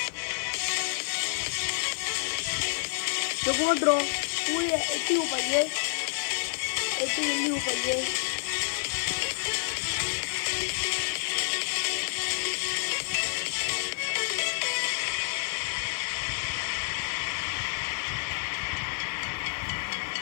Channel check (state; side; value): silent; right; 56 dB below the other